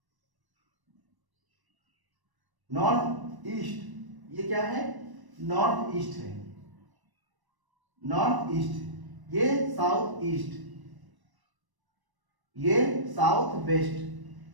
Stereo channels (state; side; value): late; left; 1.0 ms